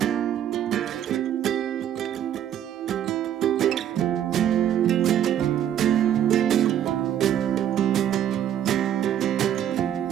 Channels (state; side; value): quieter; left; 10.5 dB